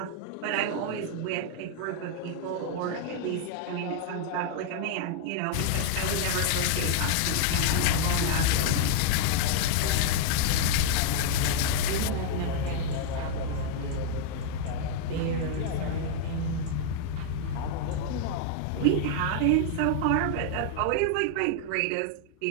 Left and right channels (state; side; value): different; both; correlation 0.00